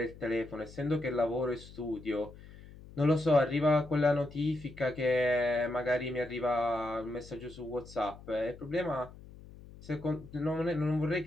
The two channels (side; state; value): left; noise; hum, 18 dB below the sound